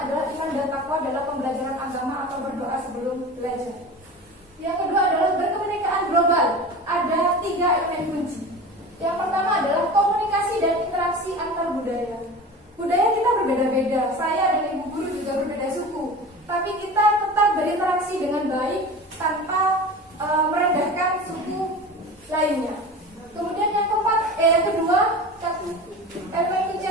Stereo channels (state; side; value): normal; both; correlation 0.34